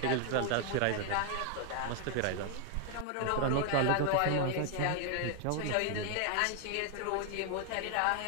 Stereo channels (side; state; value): both; different; correlation 0.00